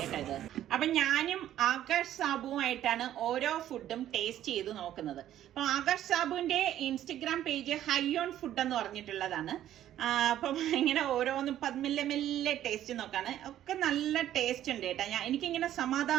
കേട്ടോ ഇത്. അപ്പൊ ഞാനും ആകാശ് സാബുവുമായിട്ടാണ് ഓരോ ഫുഡും ടേസ്റ്റ് ചെയ്ത് നോക്കുന്നത്. അപ്പൊ ആകാശ് സാബുവിന്റെ ഇൻസ്റ്റഗ്രാം പേജ് ഹൈയോൺ ഫുഡ് എന്ന് പറഞ്ഞിട്ടുള്ളതാണ്. അപ്പം ഇങ്ങനെ ഓരോന്നും മെല്ലെ ടേസ്റ്റ് നോക്കാണ്. ഒക്കെ നല്ല ടേസ്റ്റ് ഉണ്ട് കേട്ടോ. എനിക്കിങ്ങനെ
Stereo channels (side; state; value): left; quieter; 12.0 dB